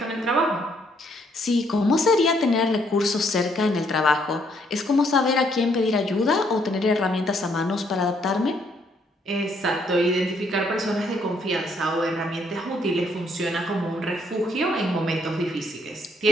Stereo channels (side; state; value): both; normal; correlation 0.70